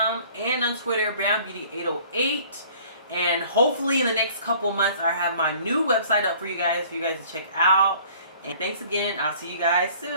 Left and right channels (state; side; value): inverted; both; correlation -0.53